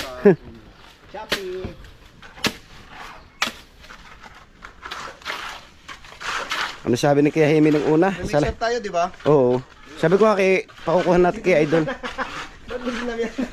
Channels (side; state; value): both; identical; correlation 1.00